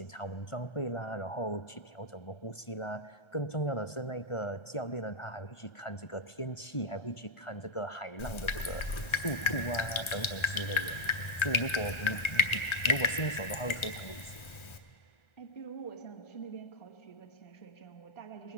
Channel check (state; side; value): late; right; 1.3 ms